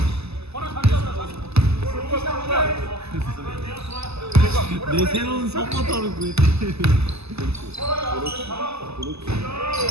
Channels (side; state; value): left; late; 0.79 ms